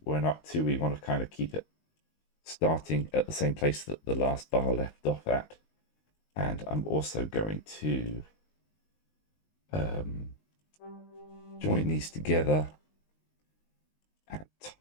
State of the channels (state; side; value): late; right; 19 ms